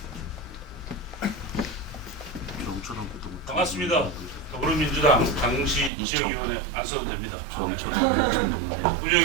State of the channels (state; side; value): drops out; left; at 5.9 s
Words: 반갑습니다. 더불어민주당 강릉시 지역위원회 안수도 됩니다.